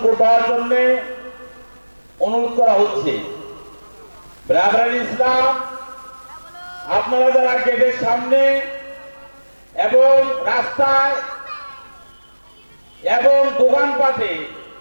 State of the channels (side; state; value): both; inverted; correlation -1.00